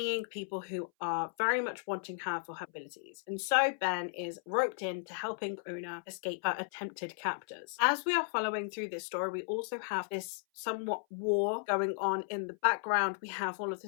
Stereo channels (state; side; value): silent; right; 54 dB below the other